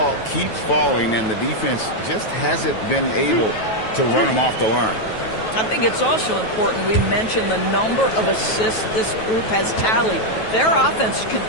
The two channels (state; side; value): late; right; 9.2 ms